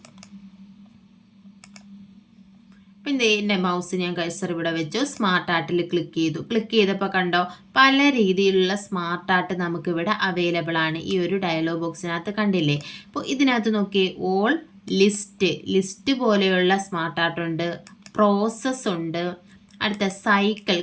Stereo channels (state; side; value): identical; both; correlation 1.00